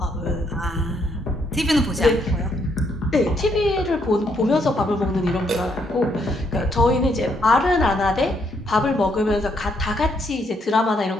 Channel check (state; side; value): normal; both; correlation 0.73